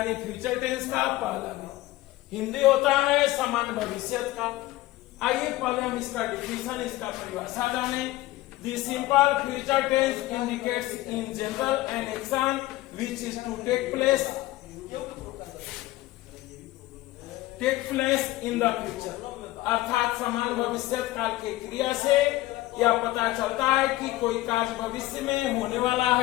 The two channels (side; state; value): right; quieter; 17.2 dB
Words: फ्यूचर टेंस का पहला भेद। हिंदी होता है समान भविष्यकाल। आइए पहले हम इसका डेफिनेशन, इसका परिभाषा जाने। The simple future tense indicates in general an action which is to take place in the future, अर्थात समान भविष्यत काल के क्रिया से यह पता चलता है कि कोई कार्य भविष्य में होने वाला